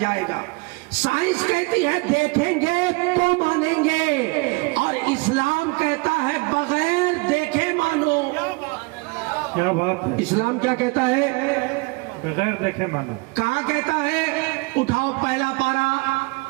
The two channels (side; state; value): left; quieter; 28.4 dB